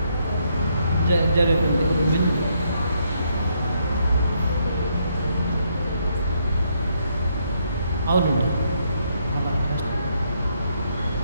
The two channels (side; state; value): both; inverted; correlation -0.74